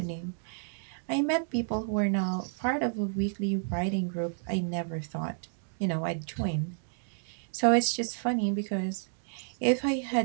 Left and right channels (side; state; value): left; silent; digital silence